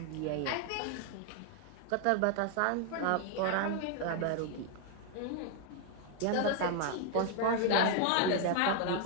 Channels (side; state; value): both; different; correlation 0.00